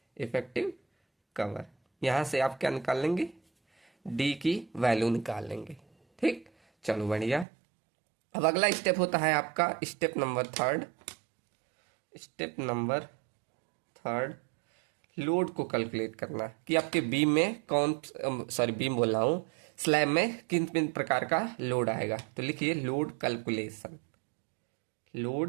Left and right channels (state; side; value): drops out; left; at 7.5 s